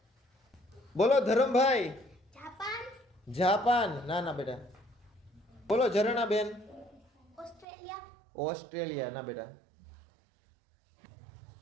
બોલો ધરમભાઈ. જાપાન. જાપાન ના ના બેટા. બોલો ઝરણા બેન. ઓસ્ટ્રેલિયા. ઓસ્ટ્રેલિયા ના બેટા.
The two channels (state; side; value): drops out; left; at 7.7 s